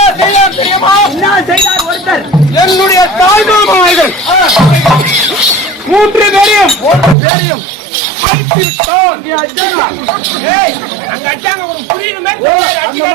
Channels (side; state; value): left; drops out; at 7.2 s